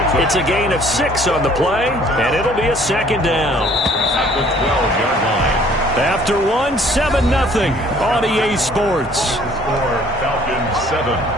It's a gain of 6 on the play, and it'll be a 2nd down. At the 12-yard line. After 1, 7-0 on EA Sports. Score Falcons 7,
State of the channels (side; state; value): both; normal; correlation 0.57